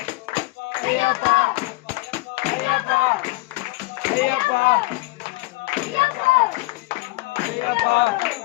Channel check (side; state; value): right; quieter; 21.5 dB